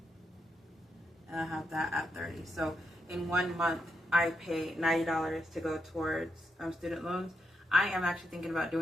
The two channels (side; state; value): both; normal; correlation 0.82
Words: and I have that at $30. So in 1 month, I pay $90 to go towards student loans. I am actually thinking about